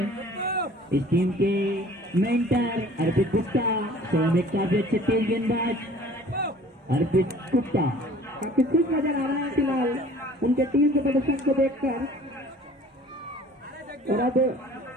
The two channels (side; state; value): both; normal; correlation 0.49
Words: इस टीम के मेंटर अर्पित गुप्ता स्वयं एक काफी अच्छे तेज गेंदबाज अर्पित गुप्ता काफी खुश नजर आ रहे हैं फिलहाल उनके टीम के प्रदर्शन को देखकर। और अब